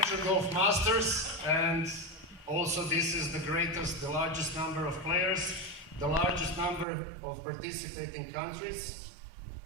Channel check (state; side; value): drops out; left; at 6.9 s